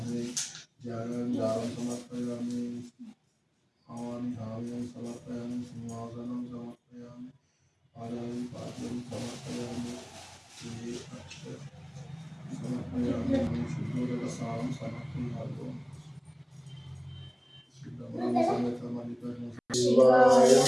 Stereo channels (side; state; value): both; identical; correlation 1.00